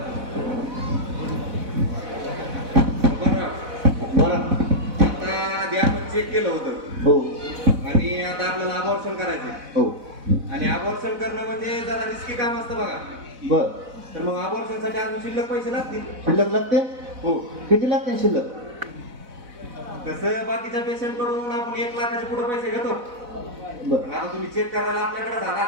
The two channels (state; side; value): late; left; 4.0 ms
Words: बरं आता आधी आपण चेक केलं होतं हो आणि आता आपल्याला अबॉर्शन करायचं हो. आणि अबॉर्शन करणं म्हणजे जरा रिस्की काम असतं बघा. बर. तर मग अबॉर्शनसाठी अजून शिल्लक पैसे लागतील. शिल्लक लागते? हो. किती लागते शिल्लक? तसं बाकीच्या पेशंट कडून आपण 1 लाखाच्या पुढे पैसे घेतो. बर. आता तुम्ही चेक करायला आपल्याकडे झाला